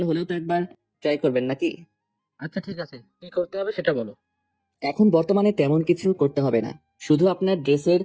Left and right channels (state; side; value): identical; both; correlation 1.00